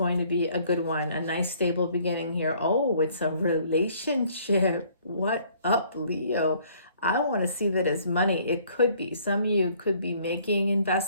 to be a good one. A nice stable beginning here. Oh, it's a relationship. What up, Leo? I want to see that as money. It could be. Some of you could be making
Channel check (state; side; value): inverted; both; correlation -0.60